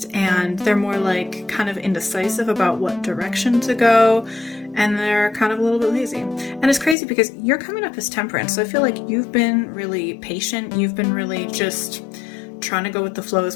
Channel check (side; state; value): right; drops out; at 7.0 s